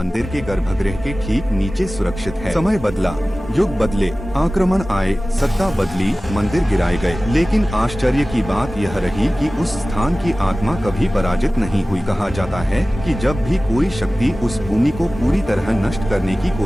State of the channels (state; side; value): normal; both; correlation 0.97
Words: के गर्भगृह के ठीक नीचे सुरक्षित है। समय बदला, युग बदले, आक्रमण आए, सत्ता बदली, मंदिर गिराए गए, लेकिन आश्चर्य की बात यह रही कि उस स्थान की आत्मा कभी पराजित नहीं हुई। कहा जाता है कि जब भी कोई शक्ति उस भूमि को पूरी तरह नष्ट करने की